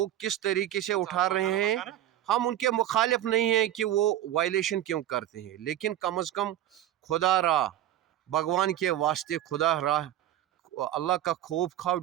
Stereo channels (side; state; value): left; quieter; 12.6 dB